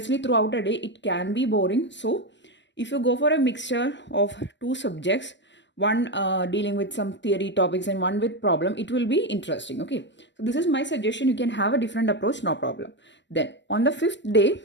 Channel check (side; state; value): right; late; 0.53 ms